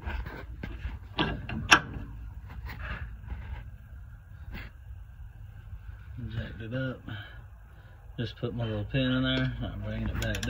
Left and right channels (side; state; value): both; identical; correlation 1.00